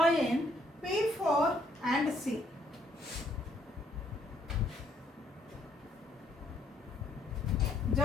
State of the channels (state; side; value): normal; both; correlation 0.68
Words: P4 and C.